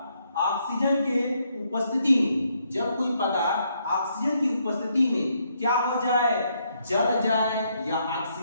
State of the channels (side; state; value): both; inverted; correlation -0.74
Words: ऑक्सीजन के उपस्थिति में, जब कोई पदार्थ ऑक्सीजन की उपस्थिति में क्या हो जाए, जल जाए या